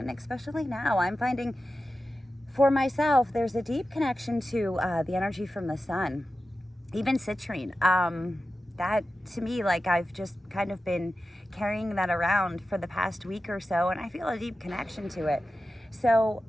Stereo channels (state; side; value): normal; both; correlation 0.93